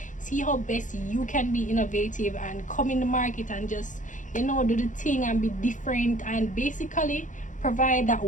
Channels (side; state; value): right; late; 0.37 ms